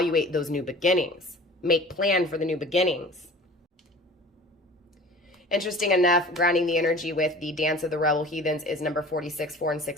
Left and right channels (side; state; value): both; normal; correlation 0.43